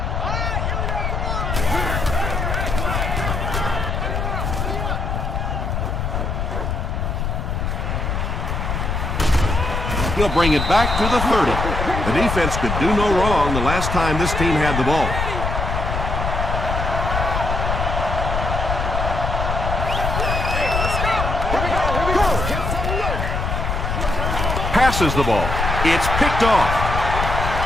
He'll bring it back to the 30. The defense could do no wrong the last time this team had the ball. Passes the ball. It's picked off.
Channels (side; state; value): left; noise; rumble, 1 dB below the sound